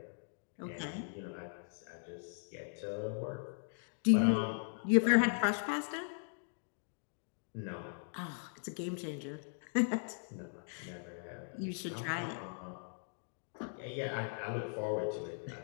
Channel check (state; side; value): silent; right; digital silence